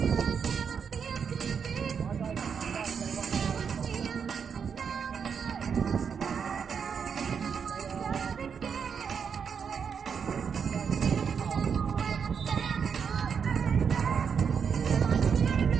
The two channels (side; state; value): left; quieter; 6.7 dB